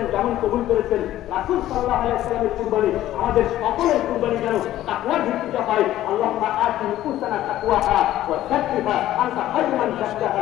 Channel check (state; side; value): quieter; right; 13.7 dB